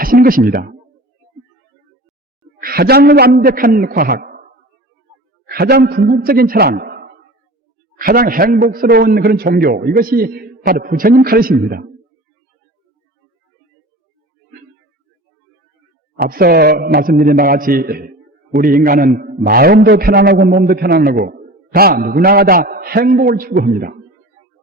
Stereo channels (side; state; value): both; normal; correlation 0.37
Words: 것입니다. 가장 완벽한 과학, 가장 궁극적인 철학, 가장 행복스러운 그런 종교, 이것이 바로 부처님 가르침입니다. 앞서 말씀드린 바와 같이 우리 인간은 마음도 편안하고 몸도 편안하고 다 누구나가 다 행복을 추구합니다.